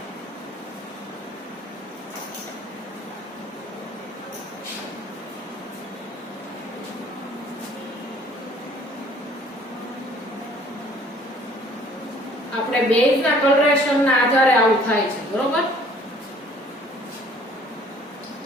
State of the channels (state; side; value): normal; both; correlation 0.56